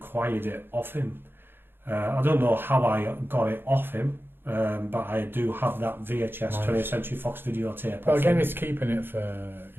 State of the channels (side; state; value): left; late; 0.10 ms